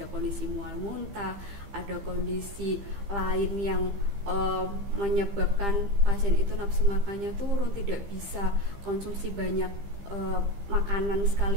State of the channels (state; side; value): late; left; 15 ms